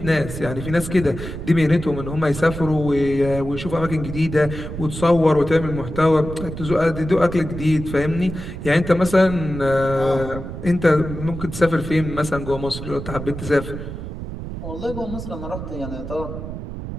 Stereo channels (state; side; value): noise; right; rumble, 8 dB below the sound